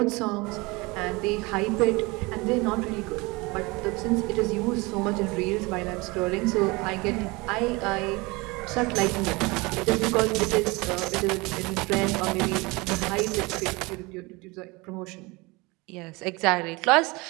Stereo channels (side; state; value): left; quieter; 24.6 dB